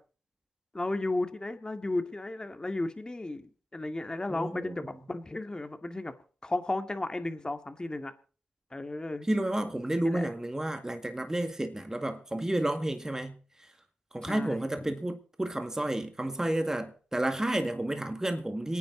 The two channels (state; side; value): normal; both; correlation 0.96